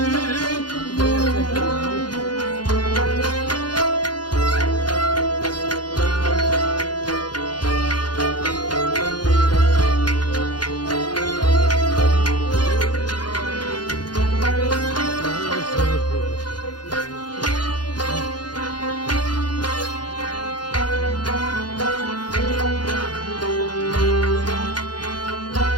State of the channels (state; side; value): late; right; 0.70 ms